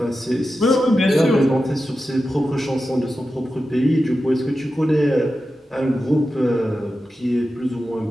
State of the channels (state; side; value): normal; both; correlation 0.92